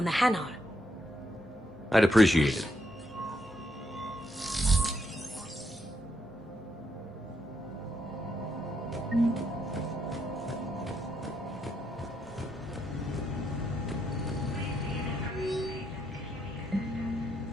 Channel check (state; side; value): normal; both; correlation 0.78